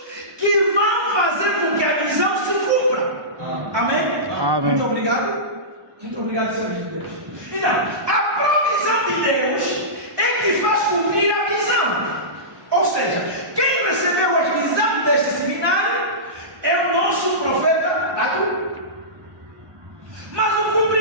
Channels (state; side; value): late; left; 1.2 ms